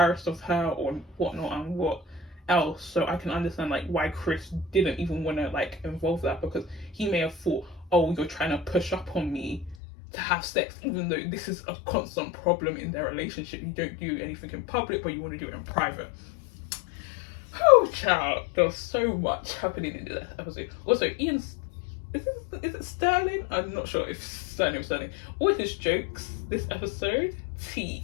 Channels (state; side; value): drops out; right; at 9.8 s